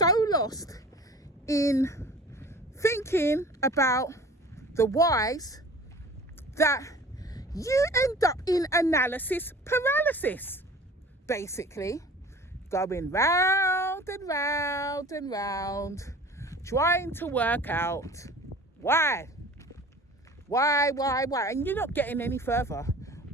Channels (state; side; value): normal; both; correlation 0.44